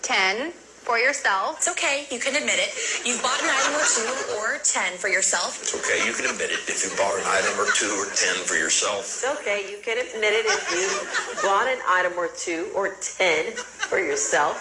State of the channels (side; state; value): both; identical; correlation 1.00